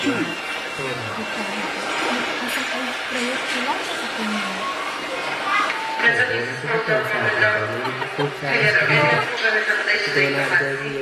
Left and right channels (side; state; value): both; identical; correlation 1.00